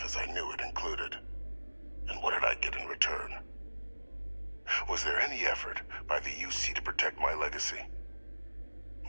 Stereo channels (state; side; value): inverted; both; correlation -1.00